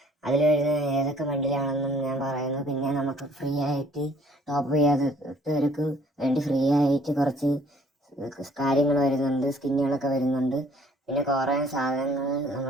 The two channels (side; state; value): both; normal; correlation 0.59